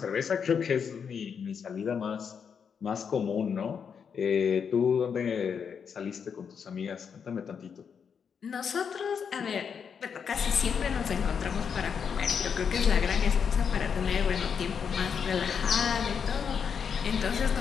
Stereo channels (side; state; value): right; quieter; 6.8 dB